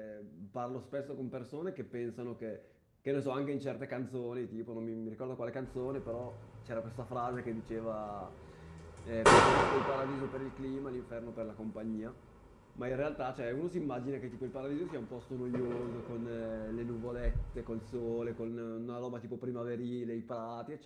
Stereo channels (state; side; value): identical; both; correlation 1.00